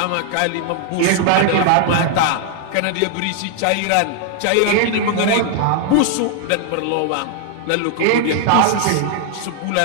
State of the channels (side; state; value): both; different; correlation 0.00